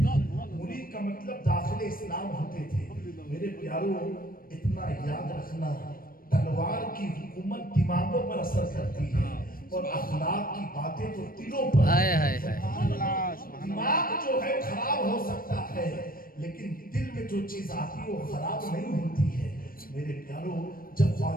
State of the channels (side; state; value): right; late; 0.42 ms